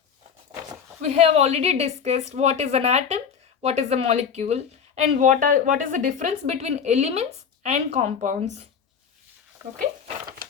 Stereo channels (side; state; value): right; quieter; 7.0 dB